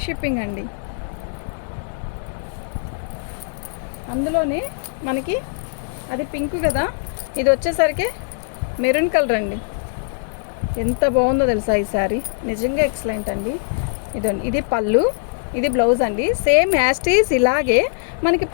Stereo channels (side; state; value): right; silent; digital silence